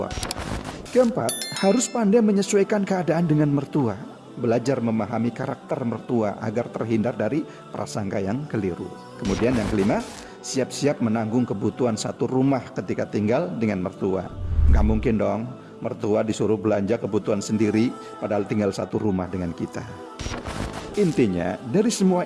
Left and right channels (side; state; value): both; identical; correlation 1.00